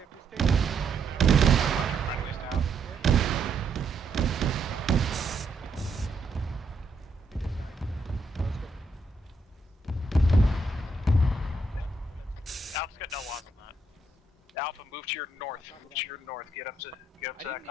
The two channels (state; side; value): quieter; left; 3.2 dB